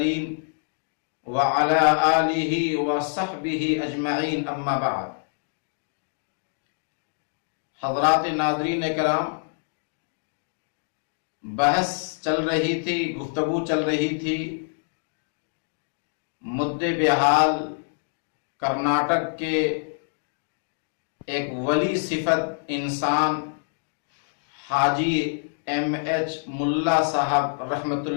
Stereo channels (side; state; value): right; silent; digital silence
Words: وعلی آلہ وصحبہ اجمعین اما بعد۔ حضرات ناظرین کرام، بحث چل رہی تھی، گفتگو چل رہی تھی مدعے بحال کرناٹک کے ایک ولی صفت انسان حاجی ایم ایچ ملا صاحب رحمت